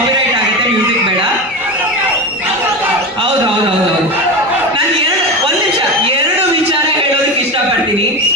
ಆಗುತ್ತೆ, ಮ್ಯೂಸಿಕ್ ಬೇಡ. ಹೌದು ಹೌದು ಹೌದು ಹೌದು. ನಾನು ಒಂದು ನಿಮಿಷ ಎರಡು ವಿಚಾರ ಹೇಳೋದಕ್ಕೆ ಇಷ್ಟಪಡ್ತೀನಿ.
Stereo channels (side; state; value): both; normal; correlation 0.22